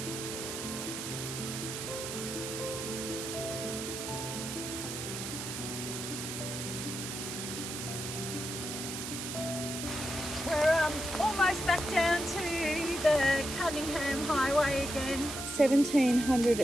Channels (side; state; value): right; noise; hiss, 6 dB below the sound